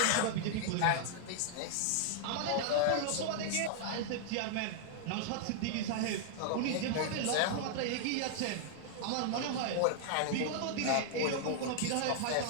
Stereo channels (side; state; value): both; different; correlation -0.01